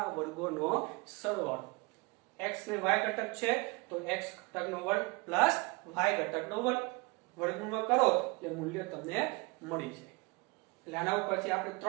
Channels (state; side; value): quieter; left; 28.3 dB